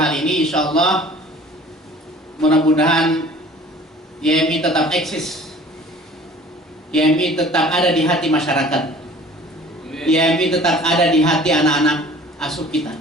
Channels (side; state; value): both; normal; correlation 0.48